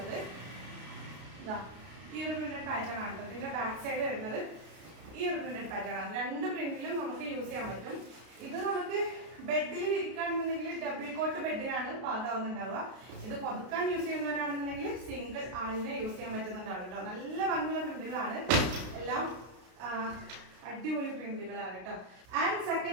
ഇതാ ഈ ഒരു പ്രിന്റഡ് പാറ്റേൺ ആണ്. ഇതിന്റെ ബാക്ക് സൈഡ് വരുന്നത് ഈ ഒരു പ്രിന്റഡ് പാറ്റേൺ ആണ്. രണ്ട് പ്രിന്റിലും നമുക്ക് യൂസ് ചെയ്യാൻ പറ്റും. ഇത് നമുക്ക് ബെഡിൽ ഇരിക്കുകയാണെന്നുണ്ടെങ്കിൽ ഡബിൾ കോട്ട് ബെഡിനാണ് പാകാവുന്നുണ്ടാവുക. ഇത് പുതുക്കാൻ യൂസ് ചെയ്യുന്നവരാണെന്നുണ്ടെങ്കിൽ സിംഗിൾ ആളിനെ യൂസ് ചെയ്യാൻ പറ്റുന്നുണ്ടാവും കേട്ടോ. നല്ല ഭംഗിയുള്ള പ്രിന്റുകളാണ്, എല്ലാം അടിപൊളി പ്രിന്റുകളാണ് കേട്ടോ. ആൻഡ്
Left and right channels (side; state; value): left; late; 32 ms